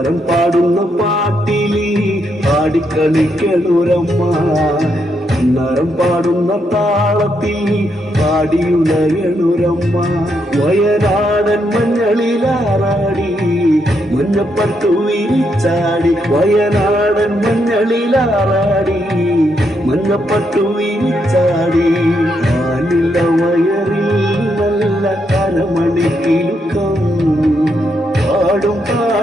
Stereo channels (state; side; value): normal; both; correlation 0.78